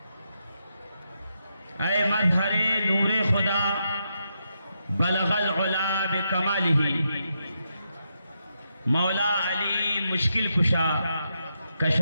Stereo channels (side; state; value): both; inverted; correlation -0.83